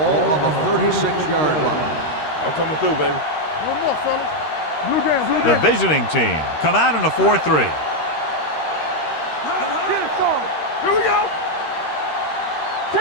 on the 36-yard line. I'm coming through, baby. One more, fellas. Blue down, blue The down. visiting team come out in a 4-3. Here we go.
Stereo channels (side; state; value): right; late; 13 ms